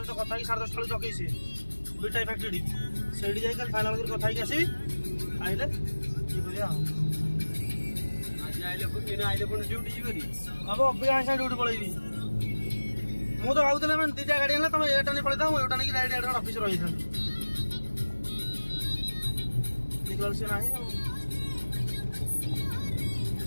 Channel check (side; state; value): both; inverted; correlation -1.00